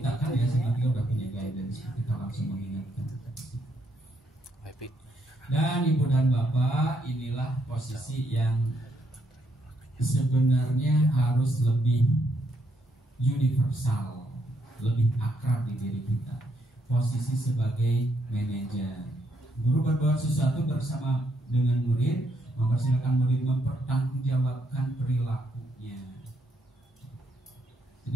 kan ya sebenarnya udah punya guidance, kita langsung mengingatkan. Dan ibu dan bapak, inilah posisi yang sebenarnya harus lebih universal, lebih akrab di diri kita. Posisi sebagai manajer. Guru berbuat sesuatu bersama dengan murid, mempersilakan murid mempertanggungjawabkan perilakunya.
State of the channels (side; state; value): both; normal; correlation 0.74